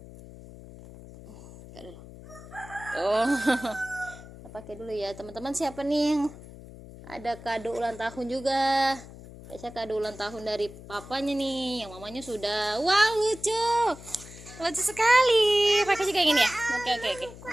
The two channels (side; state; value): left; noise; hum, 16 dB below the sound